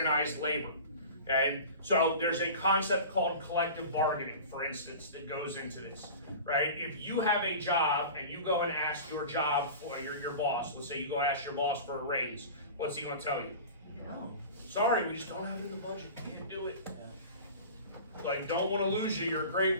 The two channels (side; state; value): both; inverted; correlation -0.36